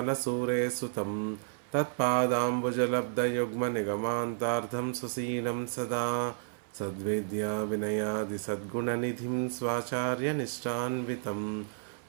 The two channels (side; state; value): left; silent; 57 dB below the other